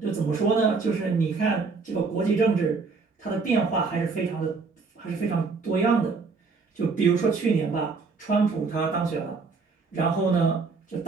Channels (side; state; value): left; quieter; 4.5 dB